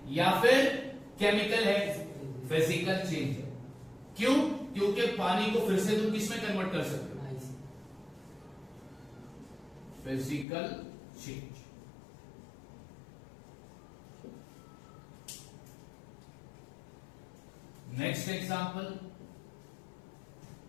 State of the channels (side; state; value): right; drops out; at 10.5 s